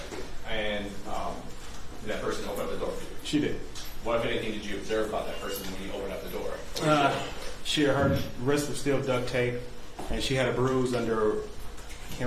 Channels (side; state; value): both; identical; correlation 1.00